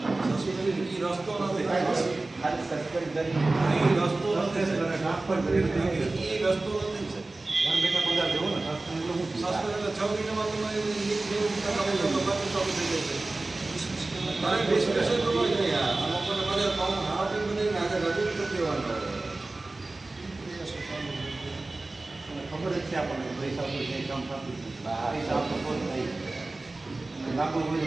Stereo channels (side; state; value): left; quieter; 3.1 dB